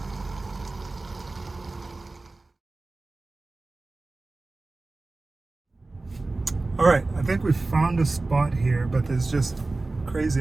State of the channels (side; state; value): left; quieter; 3.3 dB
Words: All right, I think we've found a spot here, but there's just crazy